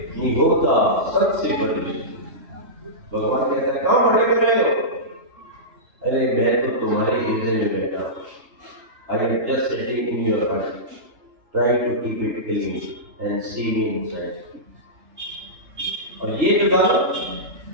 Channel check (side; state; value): left; late; 3.3 ms